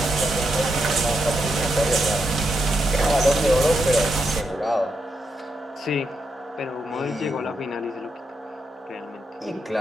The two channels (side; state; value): both; normal; correlation 0.83